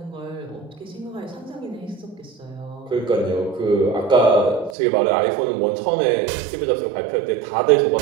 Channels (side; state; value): left; drops out; at 4.8 s